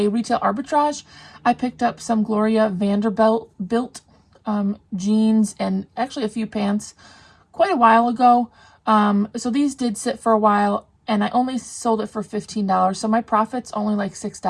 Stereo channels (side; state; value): both; identical; correlation 1.00